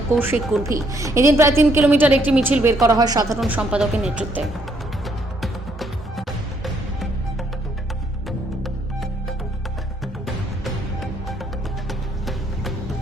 কৌশিক কুর্ভি। এদিন প্রায় 3 কিলোমিটার একটি মিছিল বের করা হয় সাধারণ সম্পাদকের নেতৃত্বে।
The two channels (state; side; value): normal; both; correlation 0.70